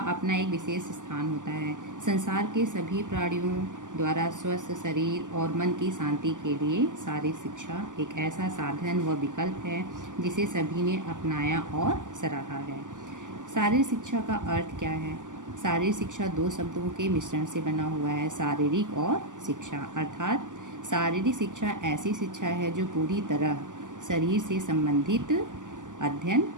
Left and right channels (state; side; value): late; left; 0.87 ms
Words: एक विशेष स्थान होता है। संसार के सभी प्राणियों द्वारा स्वस्थ शरीर और मन की शांति के लिए शारीरिक शिक्षा एक ऐसा साधन व विकल्प है जिसे सभी ने अपनाया और सराहा है। शारीरिक शिक्षा का अर्थ क्या है? शारीरिक शिक्षा दो शब्दों के मिश्रण से बना हुआ है, शारीरिक और शिक्षा। अर्थात शारीरिक शिक्षा ऐसी शिक्षा है जो पूरी तरह शरीर से संबंधित